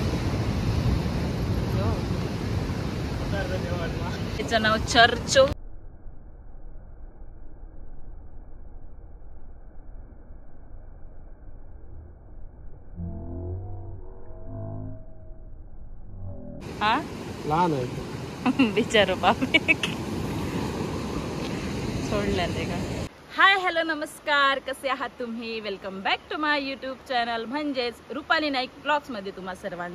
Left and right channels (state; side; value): identical; both; correlation 1.00